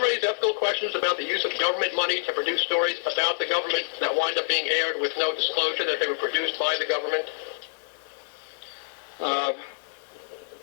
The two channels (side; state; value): right; silent; digital silence